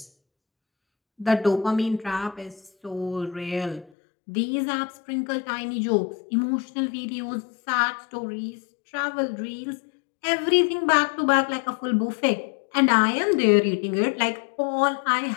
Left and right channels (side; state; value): right; drops out; at 3.9 s